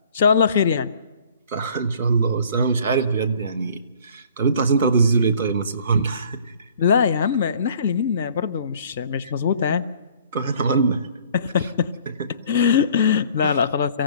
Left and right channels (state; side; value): inverted; both; correlation -0.54